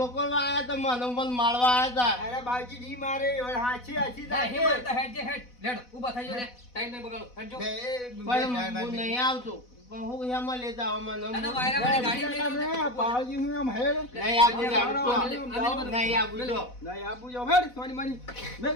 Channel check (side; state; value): right; late; 4.1 ms